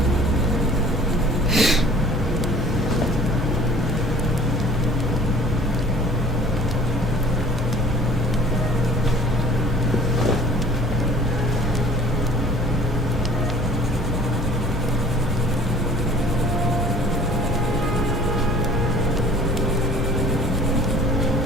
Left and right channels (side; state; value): both; normal; correlation 0.49